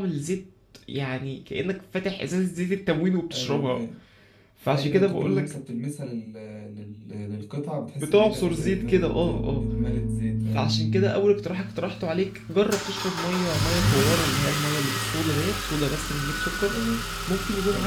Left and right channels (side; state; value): both; identical; correlation 1.00